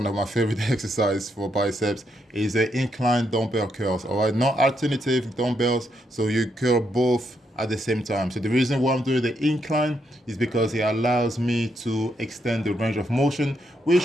of my favorite exercises for biceps, is the incline dumbbell curls, all right? Not alternative dumbbells, so you curl both at the same time. So the reason why I'm doing the incline is because it allows me to extend the range of motion,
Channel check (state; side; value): normal; both; correlation 0.78